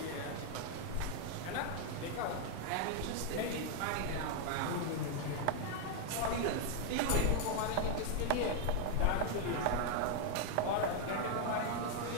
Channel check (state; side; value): different; both; correlation 0.00